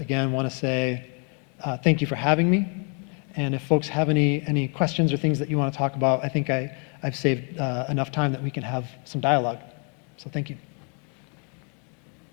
want to say thank you for having me. And if folks have any questions or things that you want to talk about, I think I've saved enough time that we can have some dialogue. So thank you.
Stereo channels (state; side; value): quieter; right; 37.2 dB